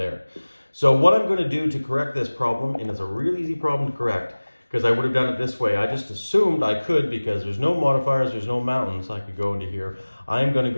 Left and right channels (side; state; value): both; inverted; correlation -1.00